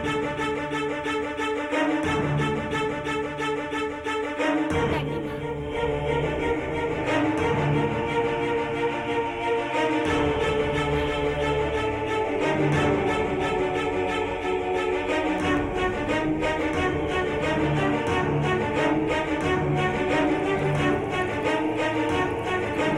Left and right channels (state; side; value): identical; both; correlation 1.00